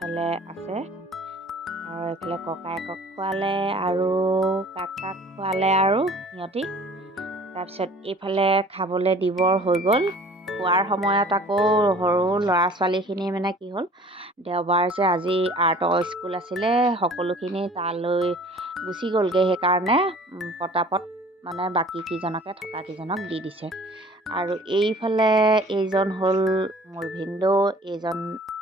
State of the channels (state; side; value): normal; both; correlation 0.49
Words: আছে। আৰু এইফালে ককায়েকক খোৱালে আৰু কাকাক খোৱালে আৰু সিহঁতি। তাৰপিছত এইফালে খাবলৈ দিবৰ হৈ গ'ল। খোৱাৰ সময়ত আকৌ সৰু ল'ৰা ছোৱালীখিনি মানে কি হ'ল, দেওবাৰ যে আজি আৰ্টৰ স্কুল আছিলে, সকলোখিনি তালৈ গুচি গ'লগৈ। সেইকাৰণে পটাপট মানে বাকী কেইজনকে থকা কেইজনক দি দিছে। আৰু এইফালে এইজন হ'ল মোৰ ভিনদেউ, এইজন